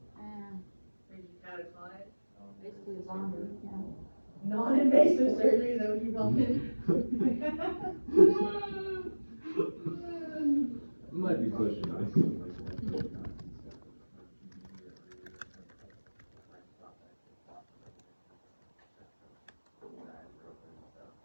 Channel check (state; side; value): inverted; both; correlation -1.00